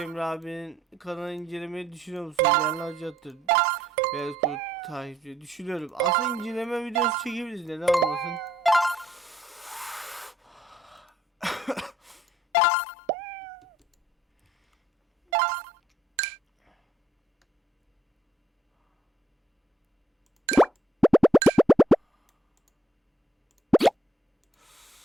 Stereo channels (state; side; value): normal; both; correlation 0.69